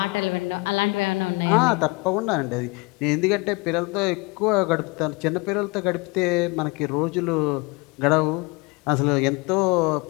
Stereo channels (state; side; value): quieter; right; 26.6 dB